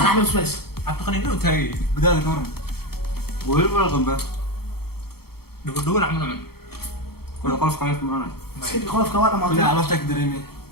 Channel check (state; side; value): late; right; 0.95 ms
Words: نحن بس اعتقد انه تاي بداية كمان وين ولا غنبة دول عملوا ولا قلف قايف معنا سكت خلاص كوارع ما كلها طلع عرفتك دريمي